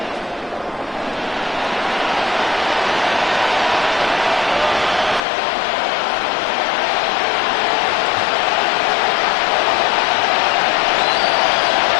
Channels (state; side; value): drops out; right; at 5.2 s